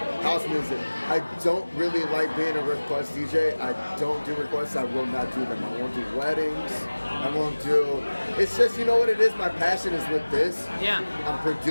House music. I don't really like being a request DJ. I don't do requests. I will not do them. I won't do weddings. I won't do... It's just, you know what it is? My passion is with this. Yeah. I'm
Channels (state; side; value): inverted; both; correlation -1.00